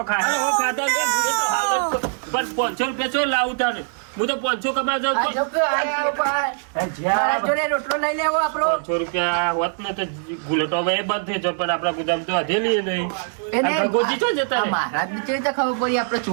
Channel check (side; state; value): left; silent; 64 dB below the other